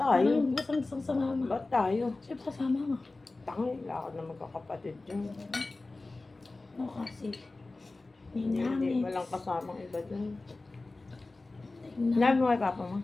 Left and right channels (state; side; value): quieter; right; 3.3 dB